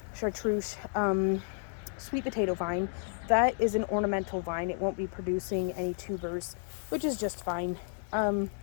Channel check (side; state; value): right; silent; digital silence